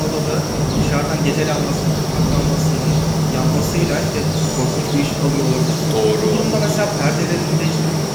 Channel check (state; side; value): identical; both; correlation 1.00